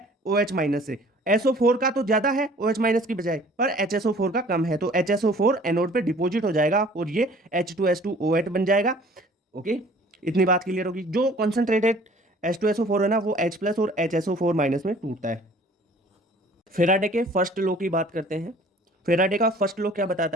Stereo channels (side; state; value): both; normal; correlation 0.52